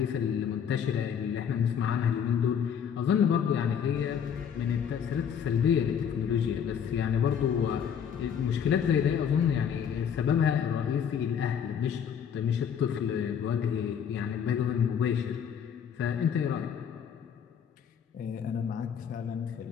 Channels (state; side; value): quieter; right; 7.9 dB